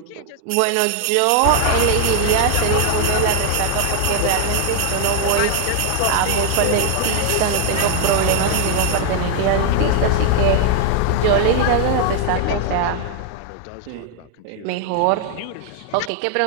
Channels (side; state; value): both; different; correlation 0.00